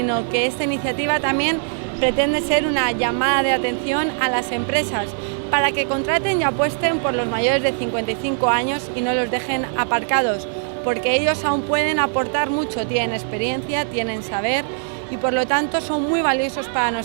sino que esta iniciativa también pretende ser una llamada de atención a las empresas para que contraten y apuesten por los mayores de 55 años y no los dejen aparcados, porque ellos aún pueden aportar mucho, tienen experiencia, tienen saber y por lo tanto son muy valiosos para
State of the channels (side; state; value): left; silent; 65 dB below the other